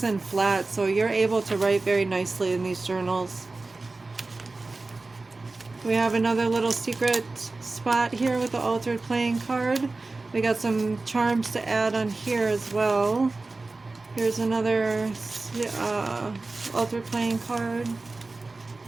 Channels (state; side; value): quieter; left; 3.5 dB